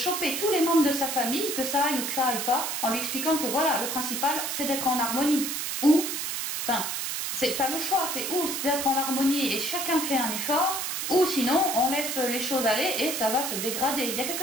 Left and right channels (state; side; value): noise; right; hiss, 2 dB below the sound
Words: tous les membres de sa famille, que ça aille ou que ça aille pas, en lui expliquant que voilà, le principal, c'est d'être en harmonie. Ou, enfin, t'as le choix, c'est d'être en harmonie et chacun fait un effort, ou sinon, on laisse les choses aller et ça va se dégrader. Il y a